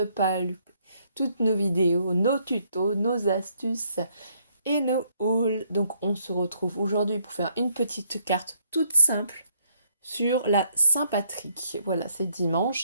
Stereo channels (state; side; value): inverted; both; correlation -0.70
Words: pas louper toutes nos vidéos, nos tutos, nos astuces et nos hauls. Donc on se retrouve aujourd'hui pour faire une petite carte toute simple sur la Saint-Patrick. Voilà, c'est